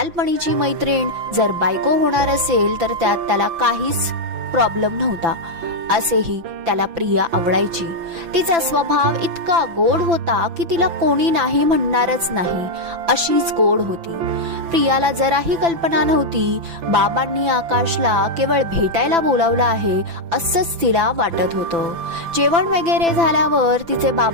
मैत्रीण जर बायको होणार असेल तर त्यात त्याला काहीच प्रॉब्लेम नव्हता। असेही त्याला प्रिया आवडायची। तिचा स्वभाव इतका गोड होता की तिला कोणी नाही म्हणणारच नाही, अशीच गोड होती। प्रियाला जराही कल्पना नव्हती बाबांनी आकाशला केवळ भेटायला बोलावलं आहे असंच तिला वाटत होतं। जेवण वगैरे झाल्यावर तिचे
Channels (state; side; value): late; left; 5.9 ms